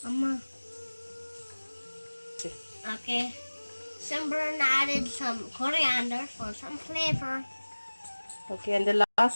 Amma. Okay. Simran added some coriander for some flavor. Okay, and the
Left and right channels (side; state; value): both; inverted; correlation -1.00